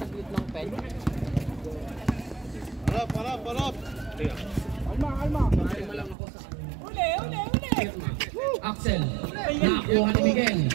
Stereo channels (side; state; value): left; drops out; at 6.2 s